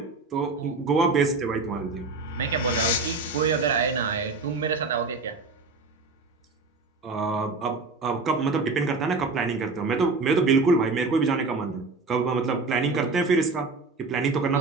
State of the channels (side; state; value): left; quieter; 3.8 dB